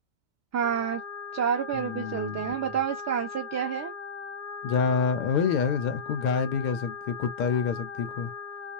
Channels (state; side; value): late; right; 2.2 ms